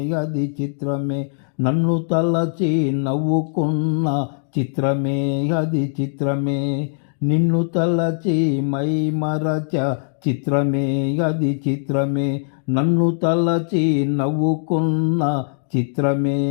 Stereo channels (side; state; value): right; silent; digital silence